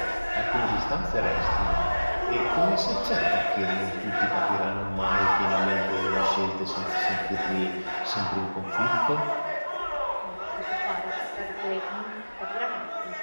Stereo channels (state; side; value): inverted; both; correlation -1.00